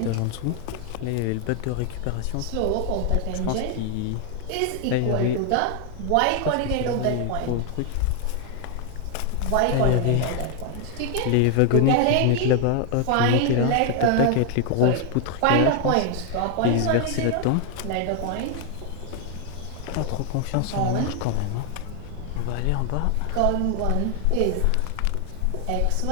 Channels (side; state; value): both; different; correlation 0.00